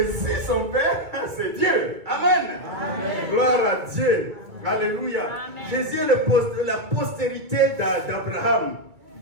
son père, c'est Dieu. Amen. Gloire à Dieu. Alléluia. Jésus est la postérité d'Abraham.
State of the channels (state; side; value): late; left; 2.2 ms